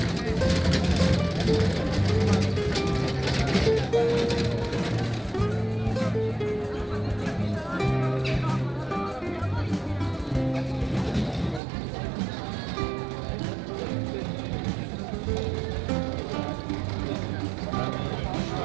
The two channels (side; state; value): left; drops out; at 11.6 s